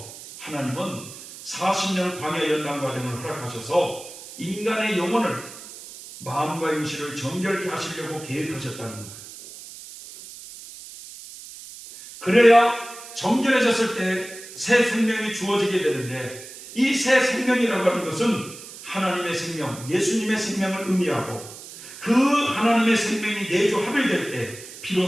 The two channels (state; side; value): noise; right; hiss, 15 dB below the sound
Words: 하나님은 40년 광야 연단 과정을 허락하셔서 인간의 영혼을 마음과 임시를 정결케 하시려고 계획하셨다는 거예요. 그래야 정결해졌을 때 새 생명이 주어지게 되는데, 이 새 생명이라고 하는 것은 하나님의 생명, 예수님의 생명을 의미하고, 그 하나님의 생명이 내주 합일될 때